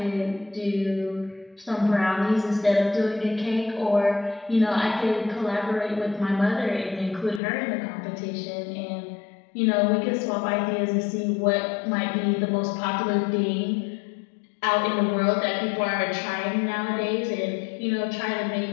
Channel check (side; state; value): right; drops out; at 7.4 s